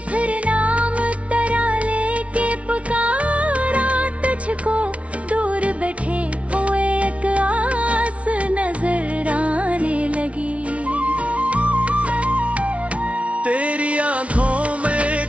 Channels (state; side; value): late; left; 0.063 ms